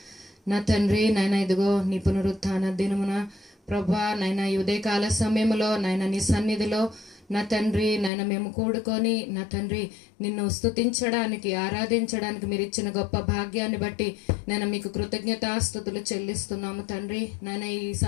నా తండ్రి నాయన ఇదిగో నీ పునరుత్థాన దినమున ప్రభా నాయన ఈ ఉదయకాల సమయంలో నాయన నీ సన్నిధిలో నా తండ్రి నాయన మేము కూడుకొని నా తండ్రి నిన్ను స్తుతించడానికి ఆరాధించడానికి మీరు ఇచ్చిన గొప్ప భాగ్యాన్ని బట్టి నేను మీకు కృతజ్ఞతాస్తుతులు చెల్లిస్తున్నాము తండ్రి నాయన ఈ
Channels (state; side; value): drops out; right; at 8.1 s